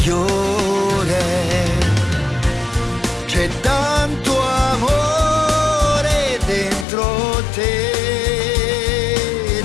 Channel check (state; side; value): drops out; right; at 6.9 s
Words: C'è tanto amore dentro te,